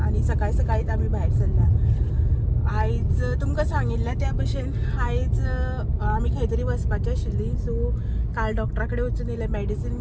आणि सकाळी सकाळीच आम्ही भायर सरल्या. आयज तुमकां सांगिल्लें त्या भशेन आयज आमी खंय तरी वचपाचीं आशिल्लीं. सो काल डॉक्टरा कडेन वचून येयलें मॅडिसीन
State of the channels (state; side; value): identical; both; correlation 1.00